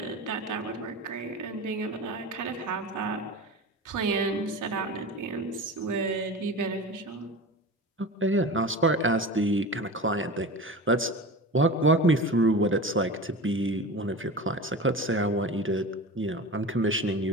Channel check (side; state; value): both; normal; correlation 0.31